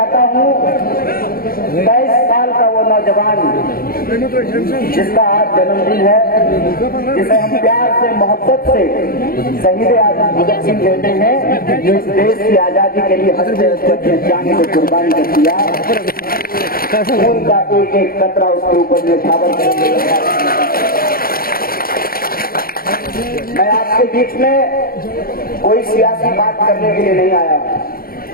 हूँ 23 साल का वो नौजवान जिसका आज जन्मदिन है, जिसे हम प्यार से मोहब्बत से शहीद आजम भगत सिंह कहते हैं, जो इस देश की आजादी के लिए हंसते हंसते अपने जान को कुर्बानी कर दिया। खून का एक एक कतरा उसके ऊपर निछावर कर दिया। मैं आपके बीच में कोई सियासी बात करने के लिए नहीं आया हूं।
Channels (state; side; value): late; right; 0.43 ms